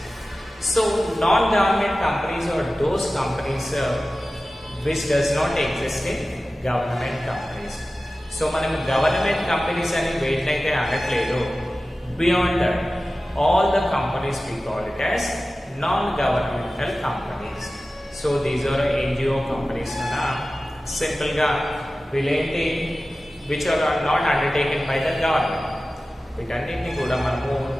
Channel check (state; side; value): normal; both; correlation 0.96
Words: So non-government companies are those companies which does not exist in government companies. So మనం government companies అని వేటినైతే అనట్లేదు, beyond that all the companies we call it as non-governmental companies. So these are NGO companies na simple గా వీళ్ళేంటి which are not undertaken by the government. వీటన్నిటిని కూడా మనము